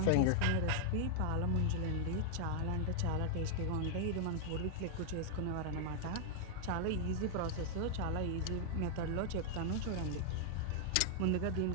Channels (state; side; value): different; both; correlation -0.01